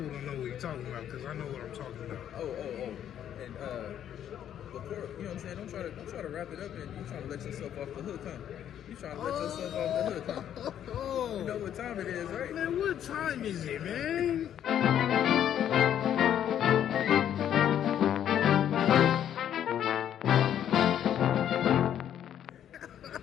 don't know what he's talking about because I know what I'm talking about. And before, you know what I'm saying, don't try to wrap it up and you trying to let yourself off the hook, huh? You trying to let yourself off the hook, huh? You know what time it is, right? Man, what time is it, man?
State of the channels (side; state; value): right; quieter; 10.2 dB